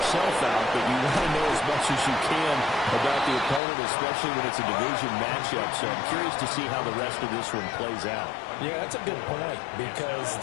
out, but you want to know as much as you can about the opponent, especially when it's a division matchup. So I'm curious to see how the rest of this one plays out. Yeah, that's a good point because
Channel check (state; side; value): drops out; right; at 3.6 s